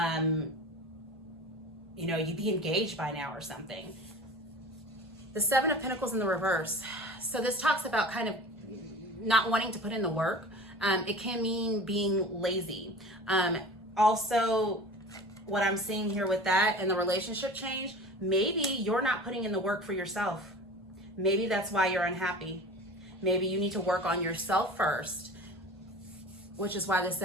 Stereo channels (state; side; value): normal; both; correlation 0.38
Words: you know, you'd be engaged by now or something. The 7 of Pentacles in the reverse. So this talks about kind of not wanting to put in the work. It can mean being lazy. Also, what I'm seeing here with that and the relationship change, maybe you're not putting in the work for yourself. Maybe that's why you're unhappy. Maybe you need to work on yourself first, which is why the